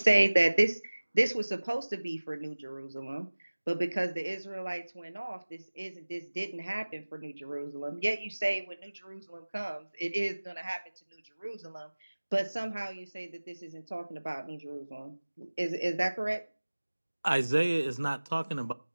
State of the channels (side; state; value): both; inverted; correlation -1.00